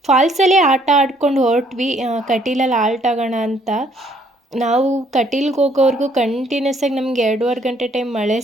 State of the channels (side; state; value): both; normal; correlation 0.65